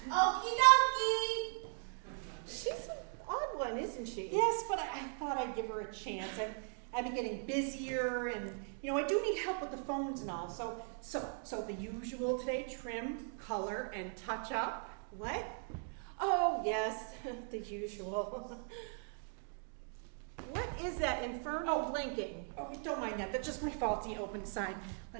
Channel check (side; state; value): left; silent; 52 dB below the other